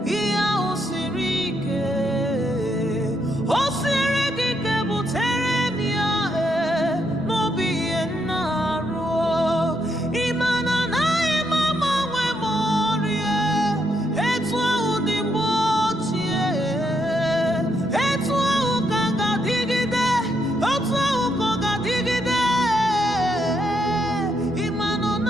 ihe ahụ siri ike o siri gị ike butere m ya n'obi ihe nna arụ ịma na anaghị m agbanwe m ọrịa etu ahụ dị mgbe ochie etu ahụ ka ga-adịgide otu ahụ ka ọ ga-adịgide ịma na ọ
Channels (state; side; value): normal; both; correlation 0.77